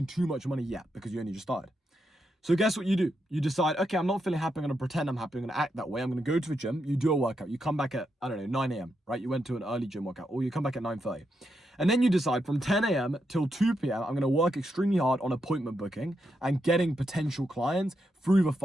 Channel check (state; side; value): normal; both; correlation 0.83